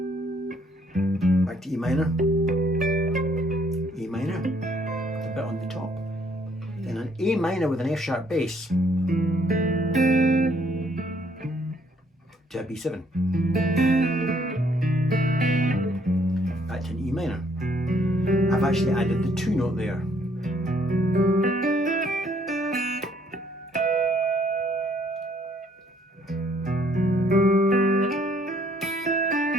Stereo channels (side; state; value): both; normal; correlation 0.65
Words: Back to E minor, E minor, with a bit on the top. Then an A minor with an F sharp bass to a B7. Back to an E minor. I've actually added the 2 note there.